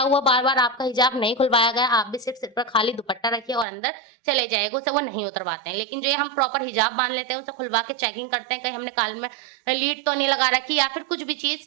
हुआ, बार बार आपका हिजाब नहीं खुलवाया गया। आप भी सिर्फ सिर पर खाली दुपट्टा रखिए और अंदर चले जाएगा, उसे वो नहीं उतरवाते हैं। लेकिन जो ये हम प्रॉपर हिजाब बांध लेते हैं, उसे खुलवा के चेकिंग करते हैं, कहीं हमने कान में लीड तो नहीं लगा रखी या फिर कुछ भी चीज,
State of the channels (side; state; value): left; drops out; at 3.7 s